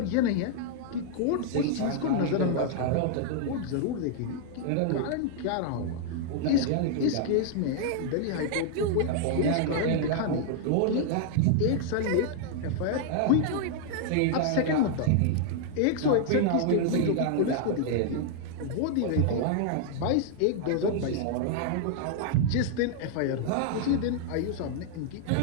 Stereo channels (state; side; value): different; both; correlation -0.01